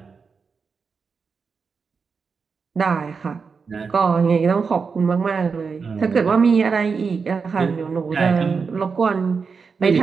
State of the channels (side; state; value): left; quieter; 5.3 dB